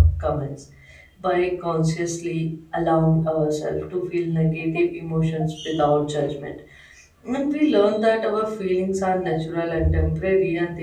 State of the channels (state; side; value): identical; both; correlation 1.00